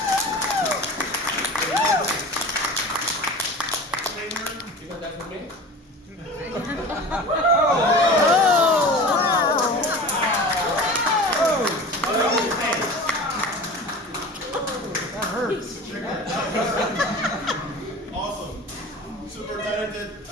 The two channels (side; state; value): both; normal; correlation 0.36